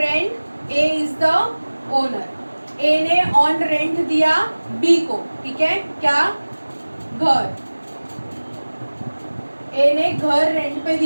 A is the owner, A ने ऑन रेंट दिया बी को, ठीक है, क्या, घर, ए ने घर रेंट पे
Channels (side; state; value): both; inverted; correlation -1.00